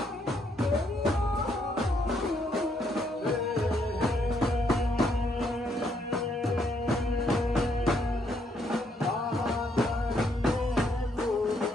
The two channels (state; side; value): normal; both; correlation 0.73